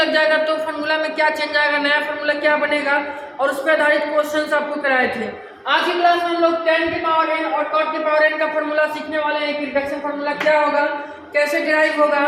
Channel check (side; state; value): both; identical; correlation 1.00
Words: जाएगा तो फार्मूला में क्या चेंज आएगा, नया फार्मूला क्या बनेगा, और उस पर आधारित क्वेश्चंस आपको कराए थे। आज की क्लास में हम लोग tan के पावर n और cot के पावर n का फार्मूला सीखने वाले हैं कि रिडक्शन फार्मूला क्या होगा, कैसे डिराइव होगा,